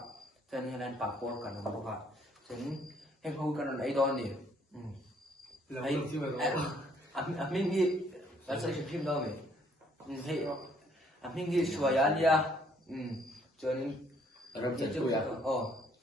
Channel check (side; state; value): both; normal; correlation 0.65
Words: chân này papor kan bốc chân em không cần ấy đó đi ấy mình nghĩ là sẽ phim đâu mình thấy mình nghĩ xua ya lia cho nên làm chân phu ya